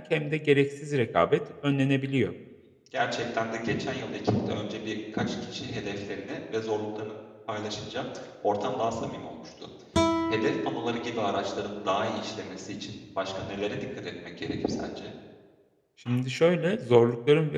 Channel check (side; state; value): both; identical; correlation 1.00